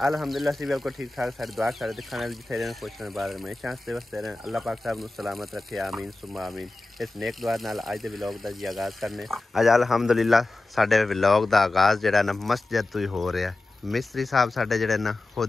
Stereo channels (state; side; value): quieter; right; 3.0 dB